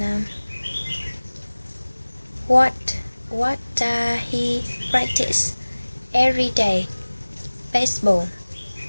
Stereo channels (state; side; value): inverted; both; correlation -1.00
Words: what does he practice every day? Baseball.